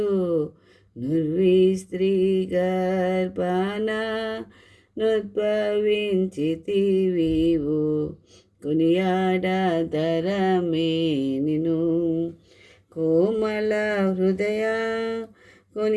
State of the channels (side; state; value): both; identical; correlation 1.00